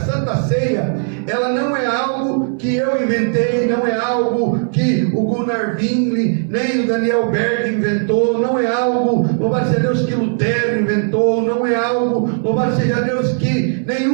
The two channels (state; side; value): silent; left; 68 dB below the other